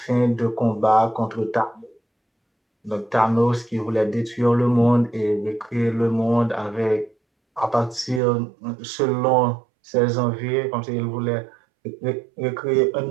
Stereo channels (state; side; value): drops out; left; at 8.2 s